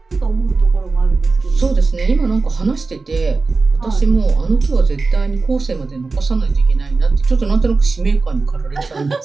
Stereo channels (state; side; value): quieter; left; 3.9 dB